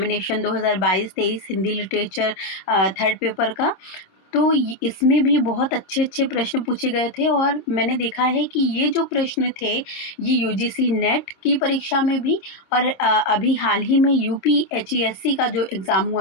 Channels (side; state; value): right; late; 27 ms